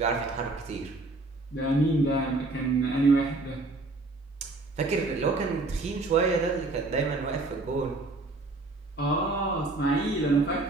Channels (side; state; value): left; quieter; 3.1 dB